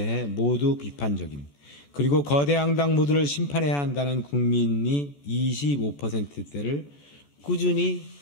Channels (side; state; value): right; late; 14 ms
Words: 모두 비판적인 그리고 거대 양당 모두를 심판해야 한다는 국민이 25%대를 꾸준히